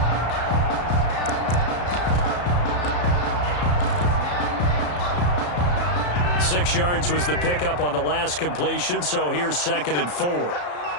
4. 6 yards was the pickup on the last completion, so here's 2nd and 4.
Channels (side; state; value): right; late; 34 ms